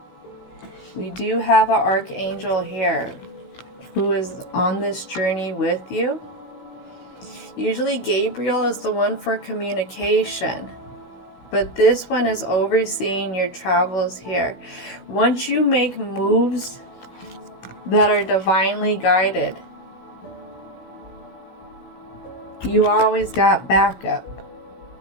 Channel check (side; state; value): right; late; 16 ms